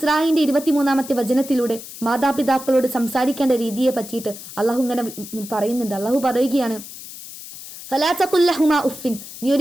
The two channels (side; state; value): left; noise; hiss, 14 dB below the sound